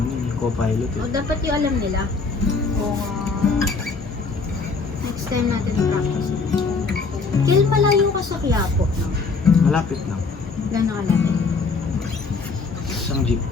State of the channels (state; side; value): quieter; right; 4.4 dB